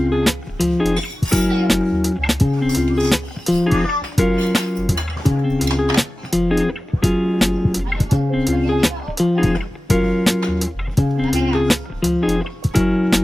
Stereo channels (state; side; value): normal; both; correlation 0.96